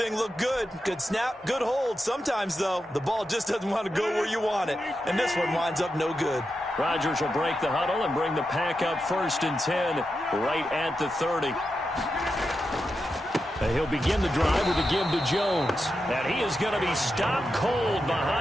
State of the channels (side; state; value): both; normal; correlation 0.88